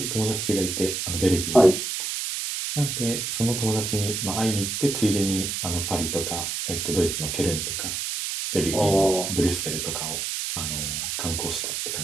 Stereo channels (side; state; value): right; noise; hiss, 3 dB below the sound